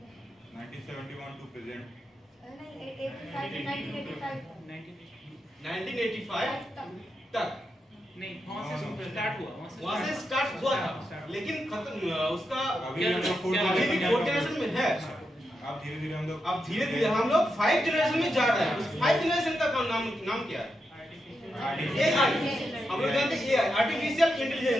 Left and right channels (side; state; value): both; normal; correlation 0.86